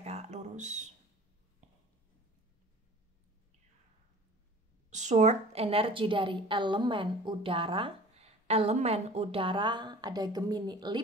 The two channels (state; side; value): normal; both; correlation 0.43